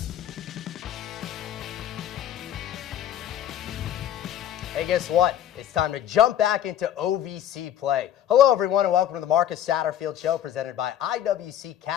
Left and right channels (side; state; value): right; quieter; 10.8 dB